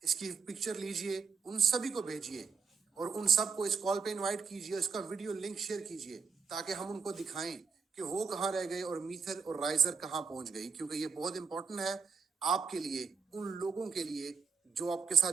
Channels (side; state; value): left; quieter; 5.5 dB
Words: इसकी पिक्चर लीजिए, उन सभी को भेजिए और उन सबको इस कॉल पे इनवाइट कीजिए, इसका वीडियो लिंक शेयर कीजिए ताकि हम उनको दिखाएं कि वो कहाँ रह गए और मीथर और राइजर कहाँ पहुंच गई। क्योंकि ये बहुत इंपॉर्टेंट है आपके लिए, उन लोगों के लिए जो आपके